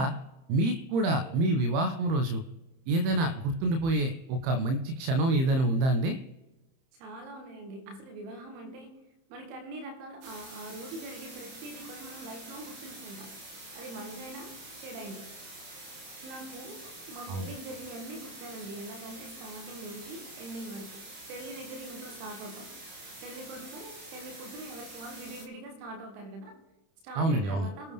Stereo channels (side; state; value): left; late; 30 ms